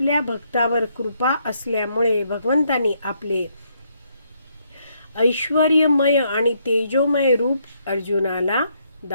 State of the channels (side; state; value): both; inverted; correlation -0.73